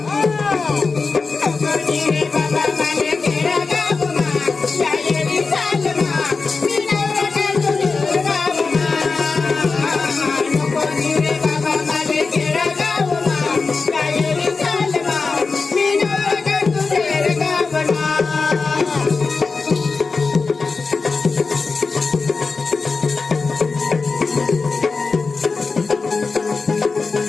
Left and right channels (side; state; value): right; quieter; 4.4 dB